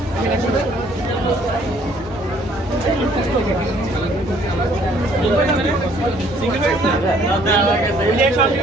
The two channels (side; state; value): both; normal; correlation 0.61